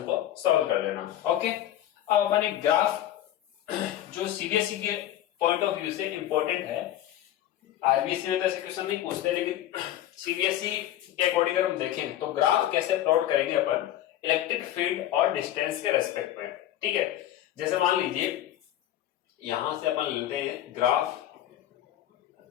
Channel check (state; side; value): quieter; right; 12.6 dB